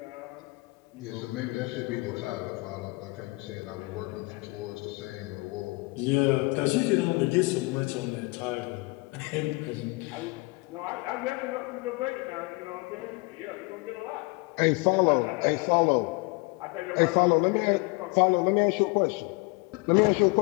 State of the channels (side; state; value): right; quieter; 26.8 dB